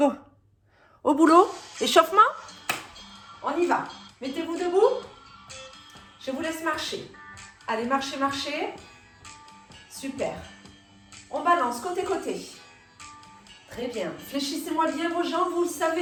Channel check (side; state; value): both; identical; correlation 1.00